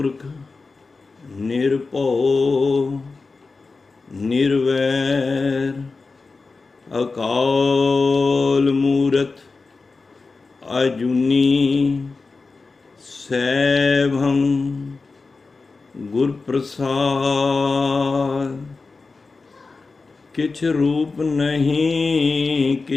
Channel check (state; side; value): quieter; right; 4.0 dB